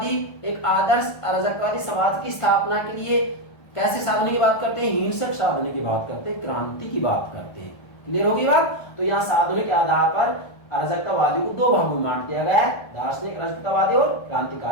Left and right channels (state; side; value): late; right; 1.3 ms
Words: एक आदर्श अराजकतावादी समाज की स्थापना के लिए कैसे साधनों की बात करते हैं? हिंसक साधनों की बात करते हैं, क्रांति की बात करते हैं। क्लियर होगी बात? तो यहाँ साधनों के आधार पर अराजकतावादी को दो भागों में बांट दिया गया है, दार्शनिक अराजकतावादी और